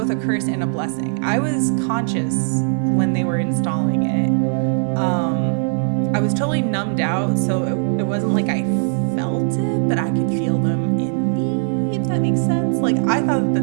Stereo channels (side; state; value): left; silent; digital silence